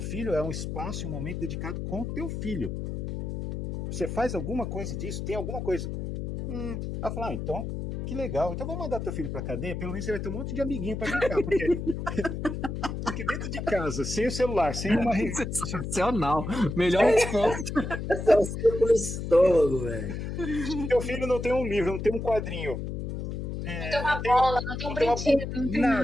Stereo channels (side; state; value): left; noise; hum, 5 dB below the sound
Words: é um espaço, um momento dedicado com o teu filho. Você faz alguma coisa disso? Tem alguma coisa? Ela fala, então, que legal. Então vamos mandar teu filho pra cadeia, pelo menos você vai ter um monte de amiguinho pra brincar. Porque dentro de casa, sem o celular, sem uma revista... Sensacional. Melhor resposta. É um círculo estômago, velho. Teu filho não tem um livro, não tem um quadrinho. Não tem uma bola, não tem um brinquedo, não tem